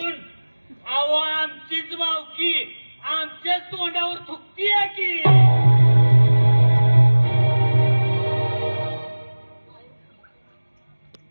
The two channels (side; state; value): both; inverted; correlation -1.00